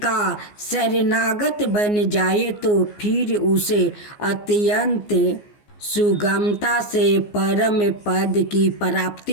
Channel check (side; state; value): right; late; 14 ms